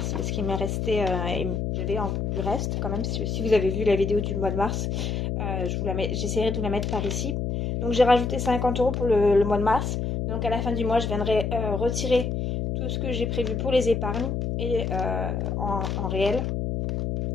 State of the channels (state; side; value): noise; left; hum, 1 dB below the sound